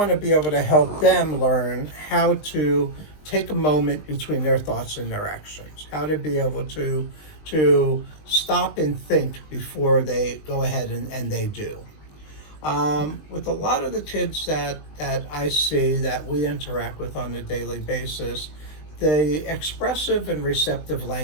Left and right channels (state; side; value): late; right; 20 ms